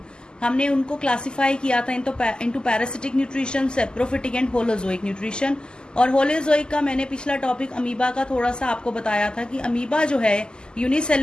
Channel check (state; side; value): late; right; 0.046 ms